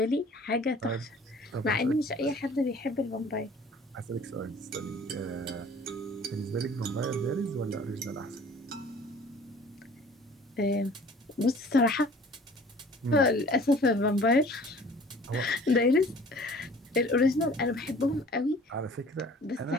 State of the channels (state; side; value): normal; both; correlation 0.49